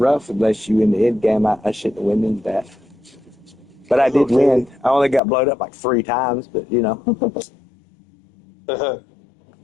unless you in the end game. I shouldn't have went into that. But I did win. I only got blowed up like 3 times, but you know. But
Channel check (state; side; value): drops out; right; at 5.2 s